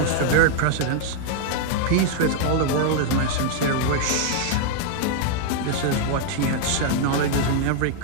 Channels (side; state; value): both; different; correlation 0.00